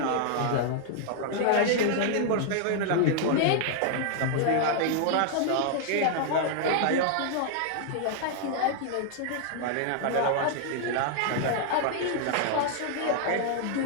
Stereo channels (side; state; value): both; different; correlation 0.00